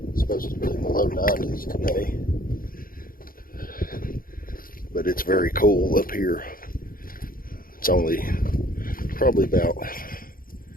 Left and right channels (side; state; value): right; late; 0.41 ms